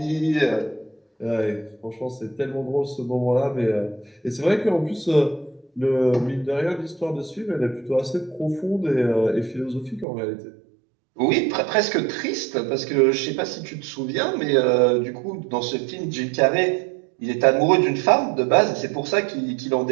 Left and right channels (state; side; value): drops out; left; at 10.1 s